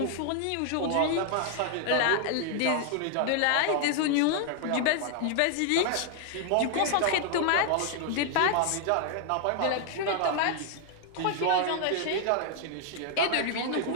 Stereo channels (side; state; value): both; different; correlation 0.00